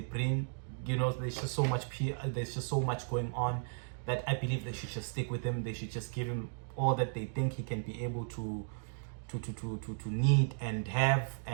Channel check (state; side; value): silent; left; digital silence